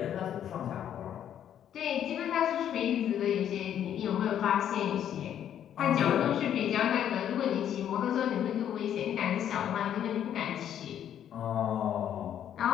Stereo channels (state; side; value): quieter; right; 10.0 dB